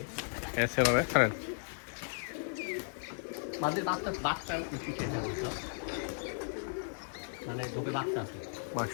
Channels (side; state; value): right; silent; digital silence